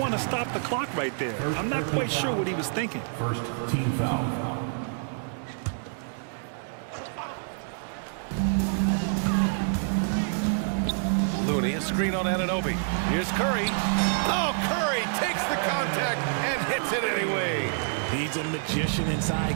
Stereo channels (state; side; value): silent; left; digital silence